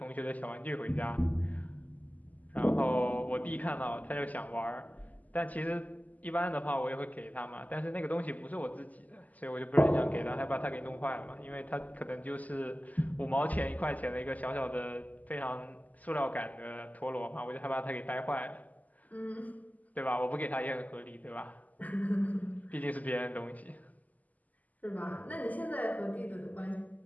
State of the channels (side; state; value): right; late; 0.078 ms